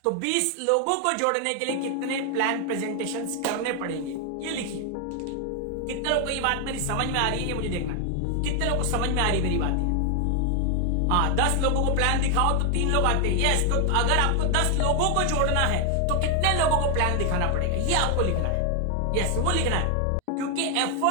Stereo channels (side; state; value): both; different; correlation 0.00